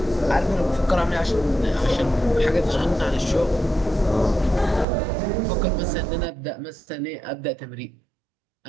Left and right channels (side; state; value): left; drops out; at 4.9 s